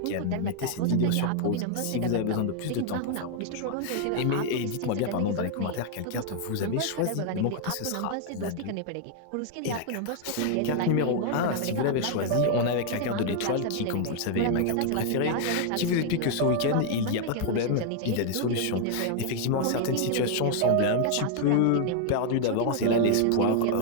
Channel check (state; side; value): different; both; correlation 0.00